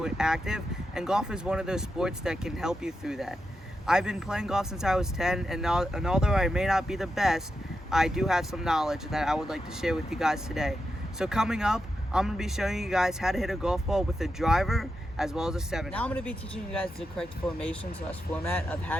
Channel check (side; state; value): both; normal; correlation 0.87